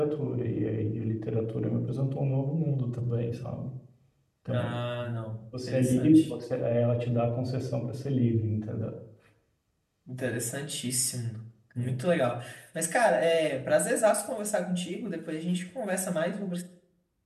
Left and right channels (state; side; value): identical; both; correlation 1.00